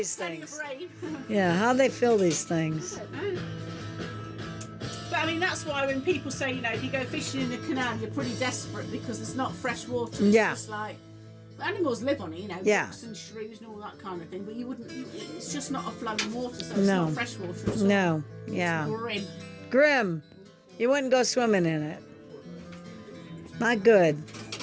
Plenty of things? rain. Yeah, how'd they fill these things? But I mean, that's why when people say, if you go fishing in the canal, you're pretty desperate because there's not fresh water. It's Yeah. just like, animals live on it, Yeah. ducks and shrews and all that kind of thing, but you wouldn't, it's just not a flowing water, so it's No. not fresh water at all. No, yeah. Grim. Grim. You wouldn't go swimming in it. Not good.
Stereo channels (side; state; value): both; identical; correlation 1.00